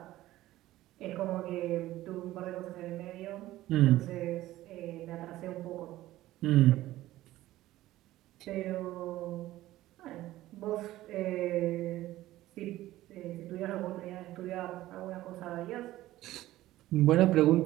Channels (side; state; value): left; quieter; 15.7 dB